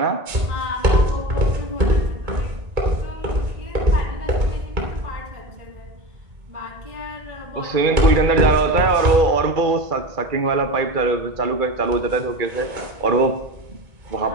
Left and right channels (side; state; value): left; late; 2.3 ms